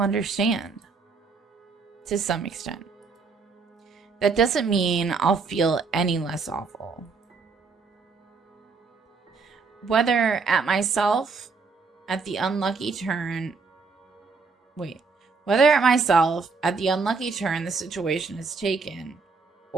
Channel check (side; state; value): left; quieter; 4.7 dB